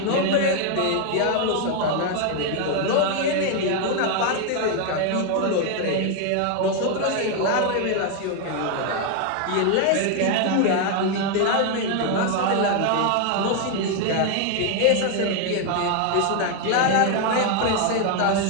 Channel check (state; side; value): different; both; correlation 0.01